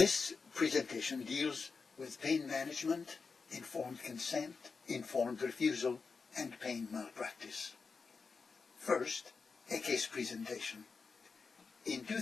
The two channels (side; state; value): right; quieter; 4.8 dB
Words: presentation deals with pain management, informed consent, informed refusal, and pain malpractice. First, a case presentation. In